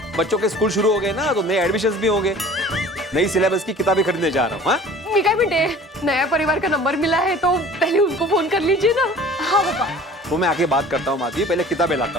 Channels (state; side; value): normal; both; correlation 0.46